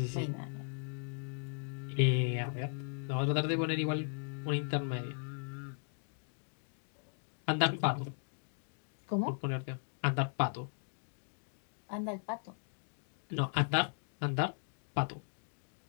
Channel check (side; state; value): right; silent; digital silence